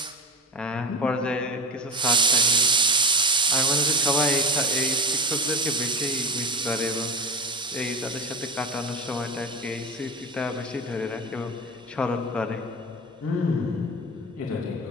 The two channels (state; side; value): normal; both; correlation 0.24